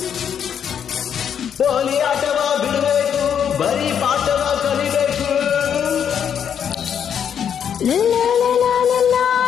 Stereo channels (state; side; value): quieter; right; 8.3 dB